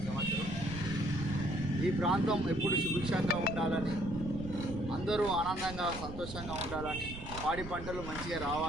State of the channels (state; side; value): noise; right; rumble, 10 dB below the sound